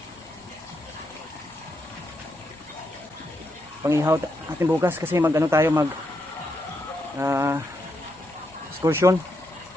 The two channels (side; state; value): both; normal; correlation 0.81